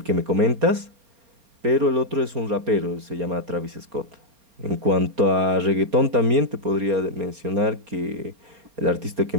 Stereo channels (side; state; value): left; late; 4.3 ms